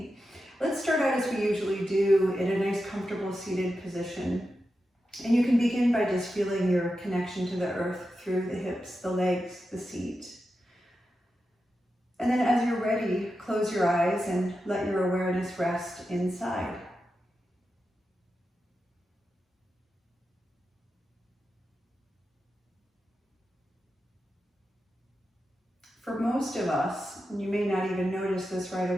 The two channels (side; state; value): both; normal; correlation 0.90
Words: Let's start out as we usually do in a nice comfortable seated position. And you can begin by just feeling your connection to the earth through the hips, the legs, the seat. And then as you're ready, close your eyes and let your awareness rest inside. For most of us, and you may not even notice this right